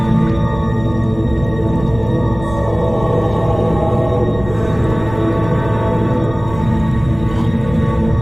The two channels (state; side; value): noise; right; rumble, 14 dB below the sound